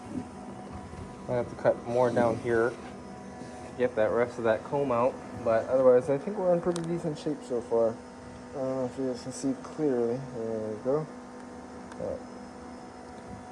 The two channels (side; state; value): both; identical; correlation 1.00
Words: I'm gonna have to cut more down here to get that rest of that comb out. But otherwise, I think we're in pretty decent shape so far. I don't know if you guys can see clearly. There we go.